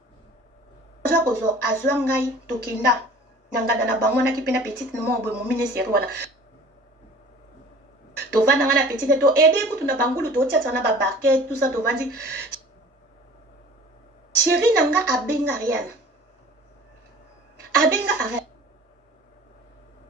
zo ko zo azwa ngai to kinda ngada na bango na kipena petite no mo boy mo ministère wana to vanda ngana petite to aider kutu na bangulu to tia na ba barquette tout ça to vandi chérie nanga abenga rien abenga rien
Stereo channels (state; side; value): normal; both; correlation 0.46